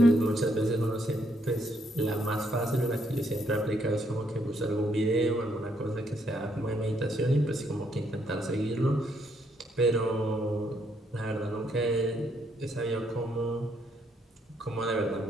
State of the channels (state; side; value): normal; both; correlation 0.73